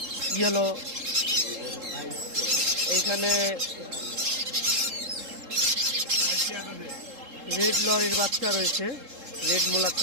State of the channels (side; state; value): left; late; 3.7 ms